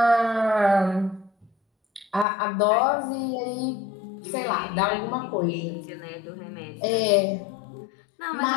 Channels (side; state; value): right; drops out; at 2.2 s